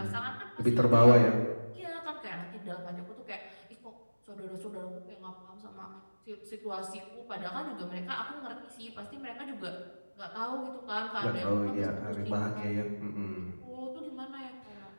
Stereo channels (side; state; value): both; inverted; correlation -1.00